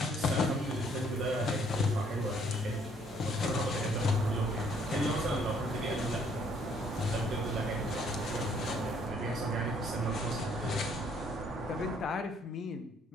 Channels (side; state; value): both; normal; correlation 0.64